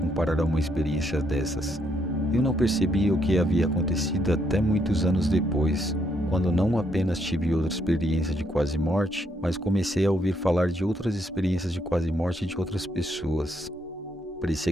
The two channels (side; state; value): both; normal; correlation 0.74